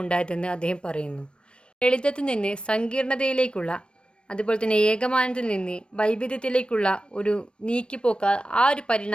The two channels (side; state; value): right; late; 0.056 ms